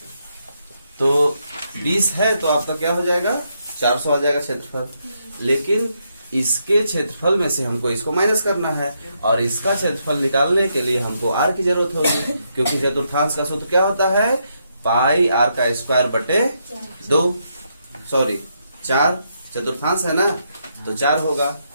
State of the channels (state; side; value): inverted; both; correlation -0.79